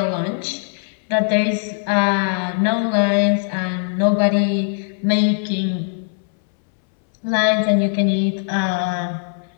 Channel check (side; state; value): right; silent; 66 dB below the other